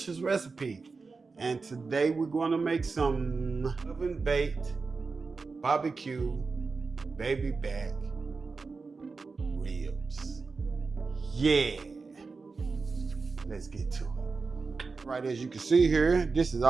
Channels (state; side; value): quieter; left; 4.3 dB